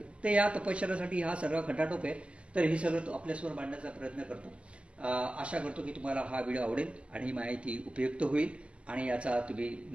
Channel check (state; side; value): late; left; 0.056 ms